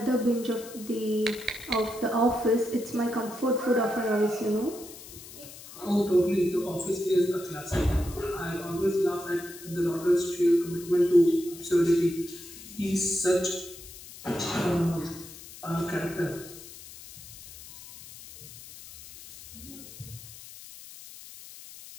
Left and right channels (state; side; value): noise; left; hiss, 16 dB below the sound